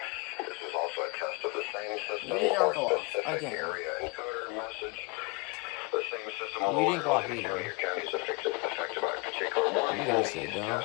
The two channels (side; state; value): right; quieter; 29.0 dB